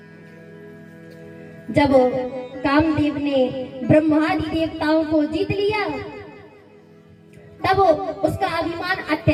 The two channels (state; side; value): identical; both; correlation 1.00